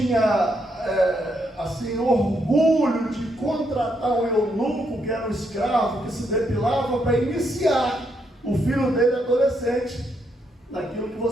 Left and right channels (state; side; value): normal; both; correlation 0.77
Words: orgulho de contratar um eunuco, que era um escravo, que se depilava para iniciar o filho dele adolescente naquilo que